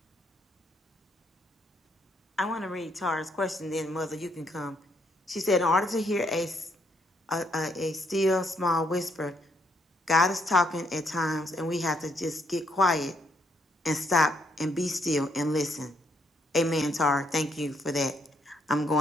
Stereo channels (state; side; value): normal; both; correlation 0.73